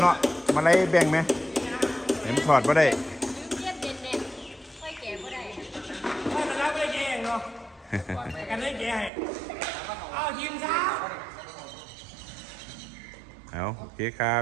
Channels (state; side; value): drops out; left; at 9.1 s